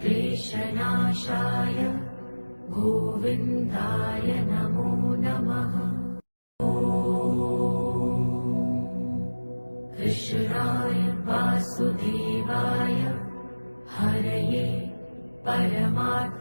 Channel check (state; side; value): inverted; both; correlation -1.00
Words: गोविन्दाय नमो नमः। कृष्णाय वासुदेवाय हरये